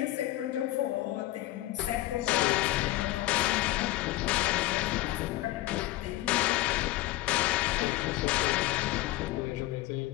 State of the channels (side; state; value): right; quieter; 16.7 dB